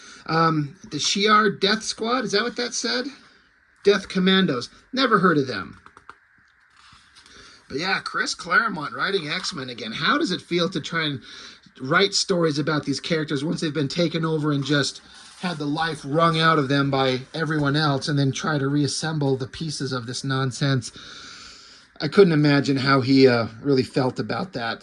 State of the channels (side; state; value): both; identical; correlation 1.00